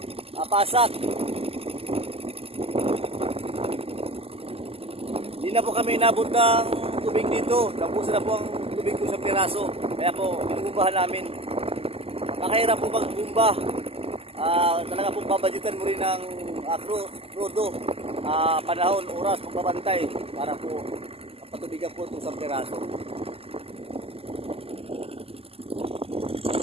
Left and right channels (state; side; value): late; left; 0.28 ms